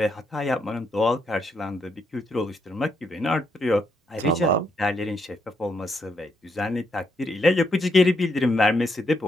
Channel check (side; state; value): both; normal; correlation 0.77